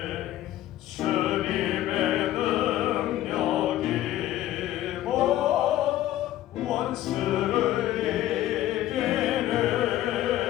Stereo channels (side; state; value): right; quieter; 13.7 dB